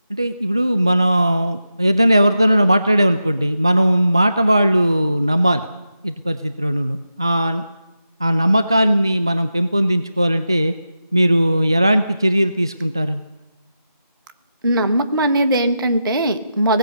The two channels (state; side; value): inverted; both; correlation -0.89